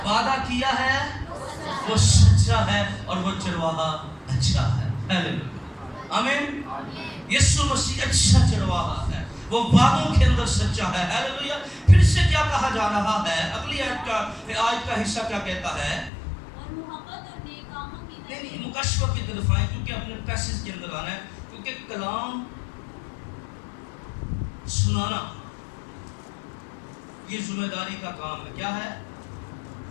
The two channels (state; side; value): drops out; right; at 16.1 s